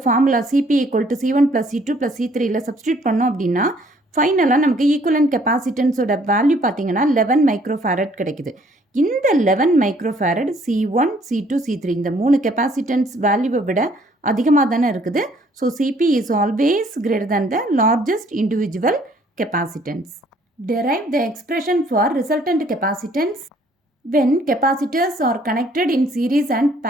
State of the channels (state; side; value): normal; both; correlation 0.62